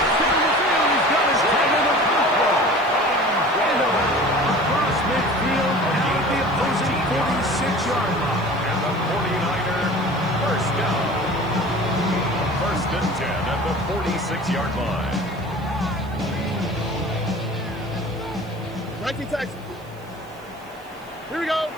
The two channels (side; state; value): right; noise; hiss, 27 dB below the sound